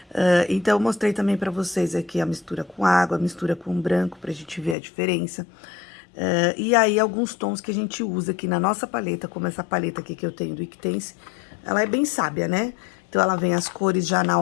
Então, eu mostrei também para vocês aqui a mistura com água, a mistura com branco, pra gente ver a diferença. E aí, alguns tons que a gente usa aqui na nossa paleta, como essa paleta aqui que eu tenho do Iquitense, ela é bem sábia, né? Então, ela vem as cores já na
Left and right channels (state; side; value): drops out; right; at 4.8 s